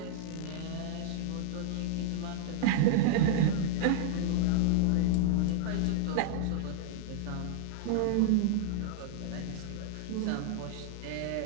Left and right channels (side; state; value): both; different; correlation -0.01